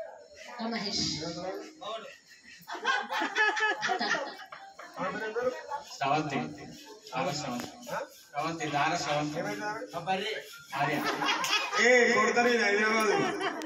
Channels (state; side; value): identical; both; correlation 1.00